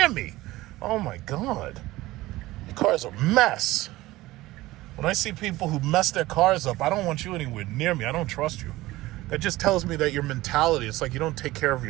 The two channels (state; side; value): quieter; left; 18.0 dB